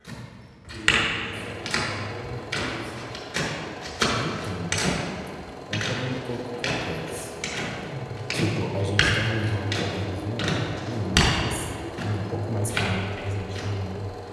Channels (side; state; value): both; identical; correlation 1.00